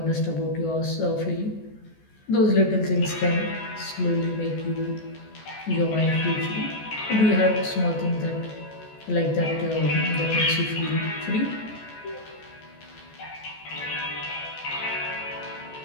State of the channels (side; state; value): right; late; 14 ms